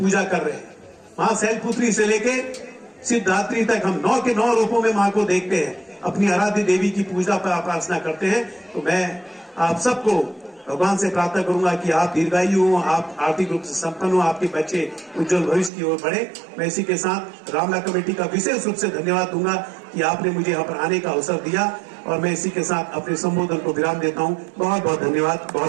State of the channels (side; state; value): left; drops out; at 15.7 s